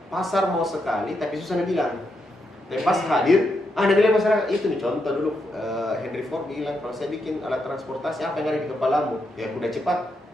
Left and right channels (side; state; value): both; normal; correlation 0.82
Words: pasar mau sekali tapi susah dibilang. Tapi pas hadir, ada bilang masyarakat itu nih, contoh dulu Henry Ford bilang, kalau saya bikin alat transportasi apa yang ada di kepalamu? Ya kuda cepat.